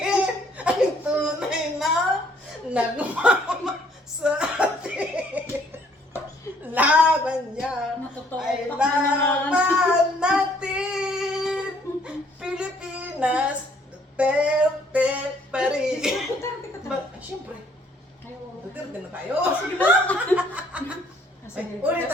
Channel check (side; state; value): both; normal; correlation 0.63